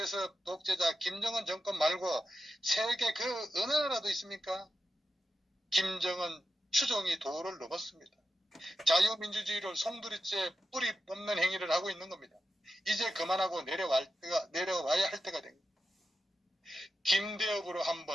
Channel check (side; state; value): both; normal; correlation 0.90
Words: 독재자 김정은 정권 말고 세계 그 어느 나라도 있습니까? 김정은 추종이 도를 넘었습니다. 자유민주주의를 송두리째 뿌리 뽑는 행위를 하고 있는 겁니다. 이제 그만하고 내려와야 할 때가 된 겁니다. 김대엽으로 한